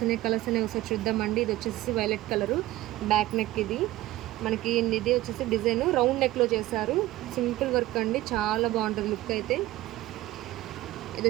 ఉన్నాయి ఒకసారి చూద్దామండి. ఇది వచ్చేసి వైలెట్ కలరు, బ్యాక్ నెక్. ఇది మనకి ఇది వచ్చేసి డిజైన్ రౌండ్ నెక్లో చేశారు. సింపుల్ వర్క్ అండి, చాలా బాగుంటుంది లుక్ అయితే. ఇది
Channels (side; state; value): left; quieter; 16.7 dB